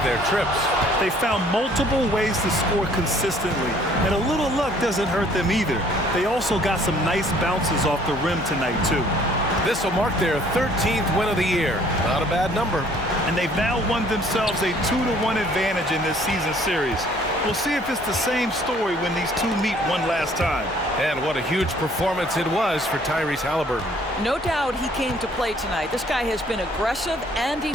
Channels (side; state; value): both; normal; correlation 0.59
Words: their trips. They found multiple ways to score consistently, and a little luck doesn't hurt them either. They also got some nice bounces off the rim tonight, too. This will mark their 13th win of the year. Not a bad number. And they've now won themselves a 2-1 advantage in this season series. We'll see if it's the same story when these two meet one last time. And what a huge performance it was for Tyrese Haliburton. No doubt he came to play tonight. This guy has been aggressive and